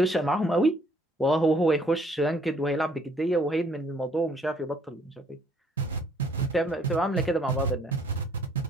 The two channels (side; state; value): both; normal; correlation 0.63